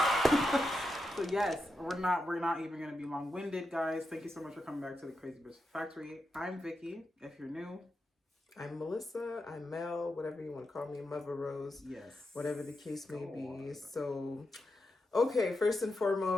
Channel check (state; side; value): normal; both; correlation 0.87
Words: So yes, we're not even gonna be long-winded, guys. Thank you so much for coming back to the Crazy Bitch Factory. I'm Vicky, if you're new. I'm Melissa. I'm Mel. Whatever you want to call me, Mother Rose. Yes. Whatever the case may be. So, okay. First and